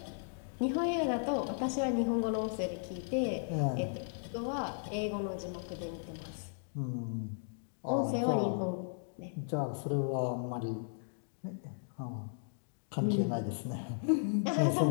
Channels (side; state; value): right; silent; digital silence